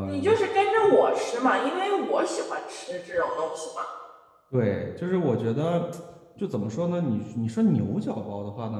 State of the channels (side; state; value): both; identical; correlation 1.00